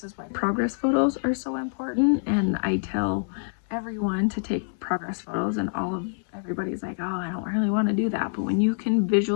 is why progress photos are so important. And I tell everyone to take progress photos, and everybody's like, oh, I don't really want to do that. But when you can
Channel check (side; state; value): right; silent; 61 dB below the other